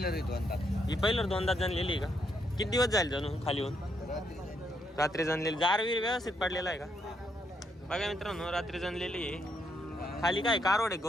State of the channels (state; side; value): normal; both; correlation 0.76